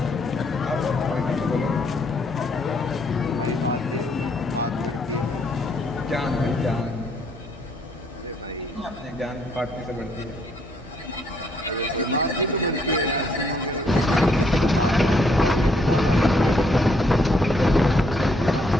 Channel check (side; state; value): both; normal; correlation 0.70